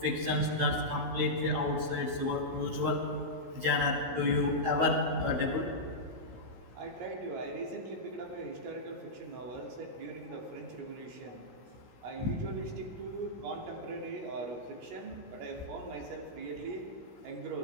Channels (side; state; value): left; late; 16 ms